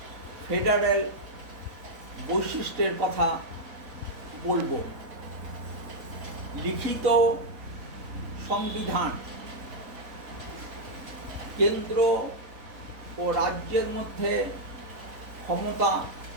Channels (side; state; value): left; late; 3.7 ms